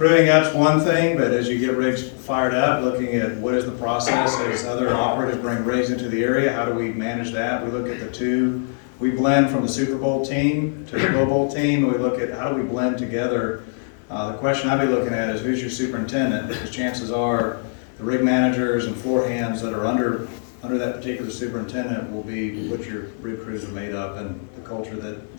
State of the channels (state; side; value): silent; right; digital silence